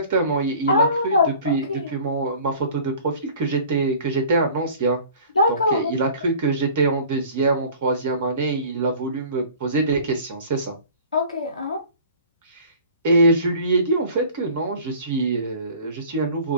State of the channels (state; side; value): inverted; both; correlation -0.46